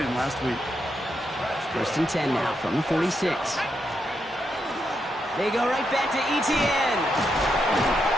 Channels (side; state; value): both; normal; correlation 0.82